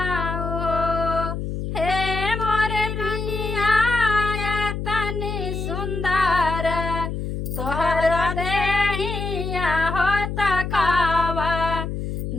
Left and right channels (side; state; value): left; noise; hum, 4 dB below the sound